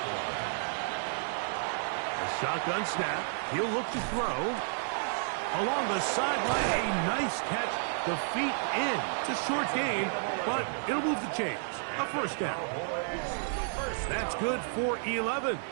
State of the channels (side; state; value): left; silent; 57 dB below the other